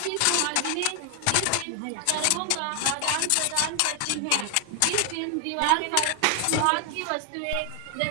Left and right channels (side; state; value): both; different; correlation 0.00